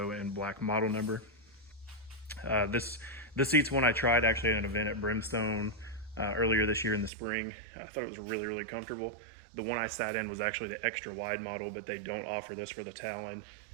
and black model number. This seat's one I tried actually at an event at Brimstone earlier this year in the spring. I thought it was really comfortable. The one I sat in was actually the extra wide model, but they don't offer this for the Talon.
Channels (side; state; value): left; drops out; at 7.1 s